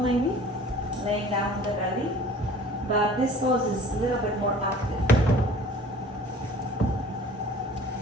maybe, laying down on the belly, but this pose is a little bit more active.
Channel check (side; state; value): both; normal; correlation 0.47